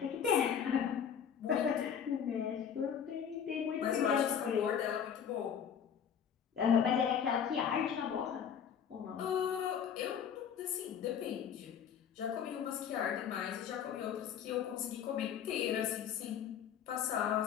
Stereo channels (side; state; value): right; quieter; 8.1 dB